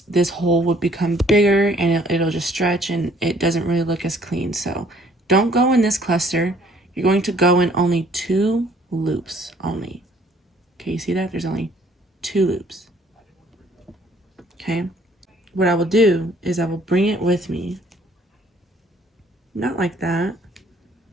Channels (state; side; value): normal; both; correlation 0.60